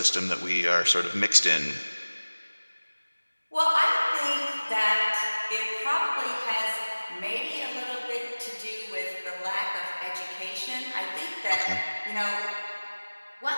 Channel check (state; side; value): inverted; both; correlation -1.00